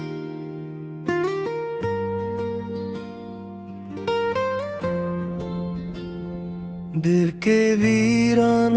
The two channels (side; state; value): both; identical; correlation 1.00